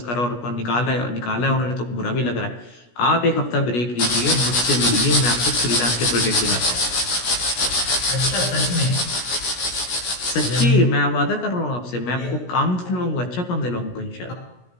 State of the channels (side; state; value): right; late; 17 ms